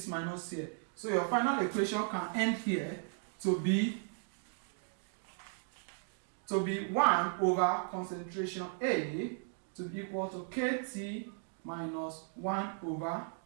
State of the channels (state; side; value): silent; left; 54 dB below the other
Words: minus here. So your final equation can end here to be 1 over concentration A to be equal to KT minus 1 over